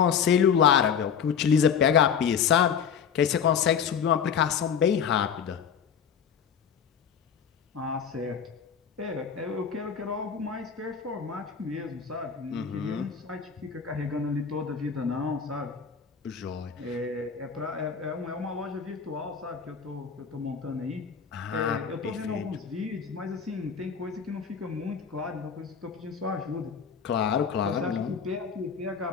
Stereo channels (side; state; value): right; quieter; 7.1 dB